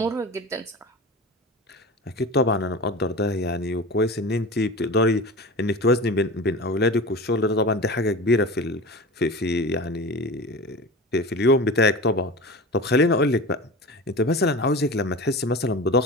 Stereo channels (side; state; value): both; normal; correlation 0.32